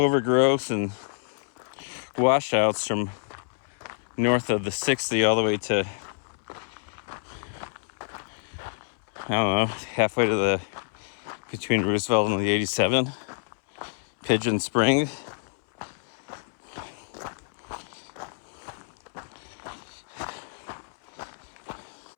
and washouts from north of the 60 all the way to, I don't know, halfway to the between Roosevelt and the 87, Pigeon Spring.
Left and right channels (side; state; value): right; silent; 60 dB below the other